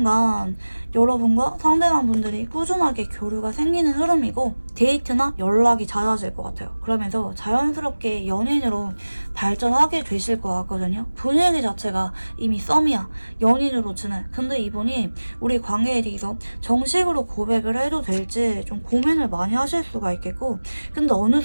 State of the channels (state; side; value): inverted; both; correlation -1.00